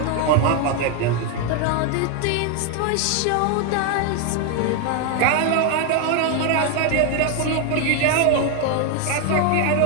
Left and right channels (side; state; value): both; different; correlation 0.01